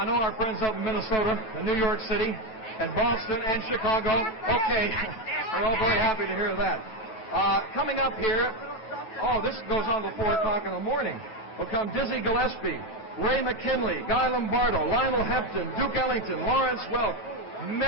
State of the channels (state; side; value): late; right; 9.2 ms